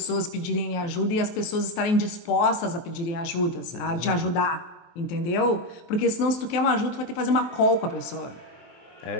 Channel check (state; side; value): late; right; 23 ms